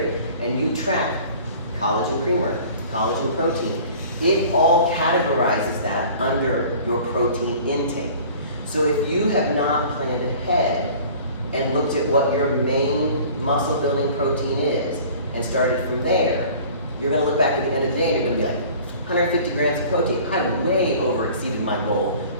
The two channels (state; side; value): inverted; both; correlation -0.46